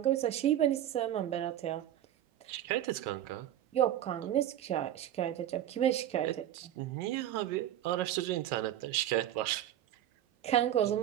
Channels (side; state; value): left; quieter; 11.8 dB